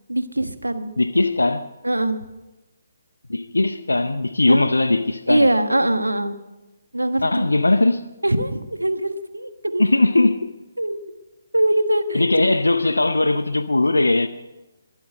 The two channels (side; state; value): both; inverted; correlation -0.96